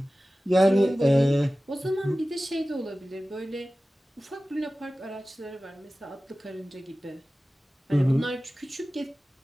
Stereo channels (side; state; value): both; normal; correlation 0.96